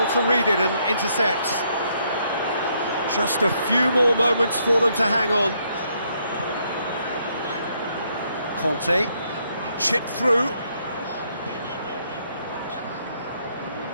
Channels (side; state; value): both; inverted; correlation -0.72